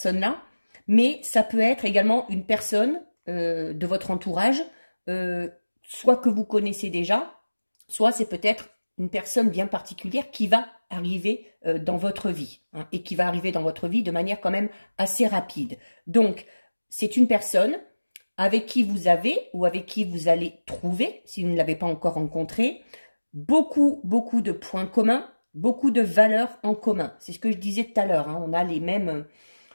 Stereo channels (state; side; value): inverted; both; correlation -1.00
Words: mais ça peut être également une personne de votre entourage, soit que vous connaissez déjà, soit c'est peut-être une personne bien particulière qui va arriver dans votre vie, hein, et qui va arriver dans votre vie de manière quand même assez rapide. Donc, c'est une personne avec qui vous avez ou avec qui vous allez trouver, si vous ne l'avez pas encore rencontré, beaucoup de points communs, beaucoup de valeurs en commun. C'est ce que je disais tout à l'heure, hein, on a les mêmes...